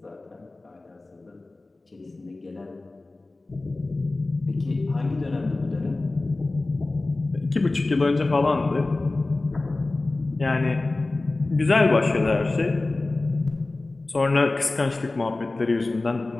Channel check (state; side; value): quieter; right; 3.1 dB